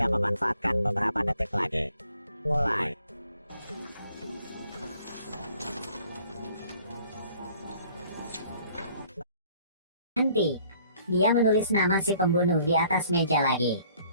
memanfaatkan beberapa detik lagi. Mulai. Berhenti. Dia menulis nama si pembunuh di atas meja lagi.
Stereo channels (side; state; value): both; inverted; correlation -0.59